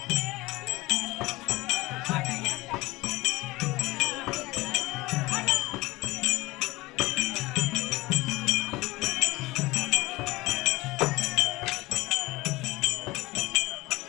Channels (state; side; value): quieter; right; 20.8 dB